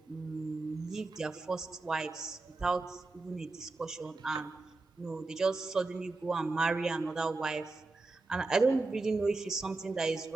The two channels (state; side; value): quieter; left; 3.5 dB